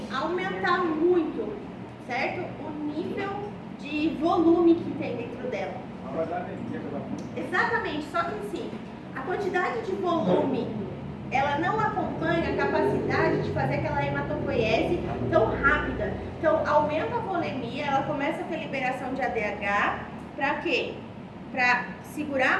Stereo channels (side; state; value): both; identical; correlation 1.00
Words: aumentar muito certo? O nível de volume que tem dentro dela. Não vai dar anemia pela mão. Exatamente, só que assim, a quantidade de volume, ela não acompanha a capacidade de fazer aquela hematopoiese tão rápida. Então, aumenta a volemia, ela começa a ter liberação de ADH, para quê? Para